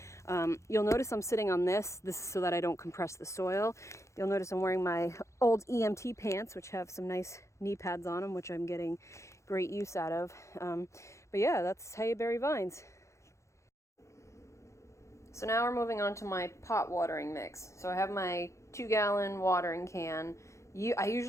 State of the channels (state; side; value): late; right; 0.14 ms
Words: You'll notice I'm sitting on this is so that I don't compress the soil. You'll notice I'm wearing my old EMT pants, which have some nice knee pads on them, which I'm getting great use out of. But yeah, that's how you bury vines. So now we're moving on to my pot watering mix. So I have my 2-gallon watering can. I